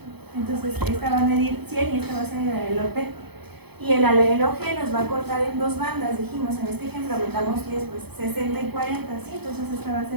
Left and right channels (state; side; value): late; left; 0.98 ms